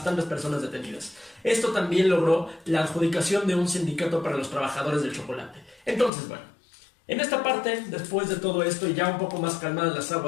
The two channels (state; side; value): drops out; right; at 6.1 s